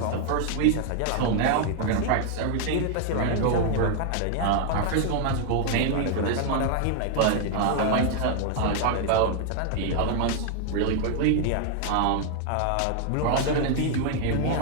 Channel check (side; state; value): both; different; correlation 0.00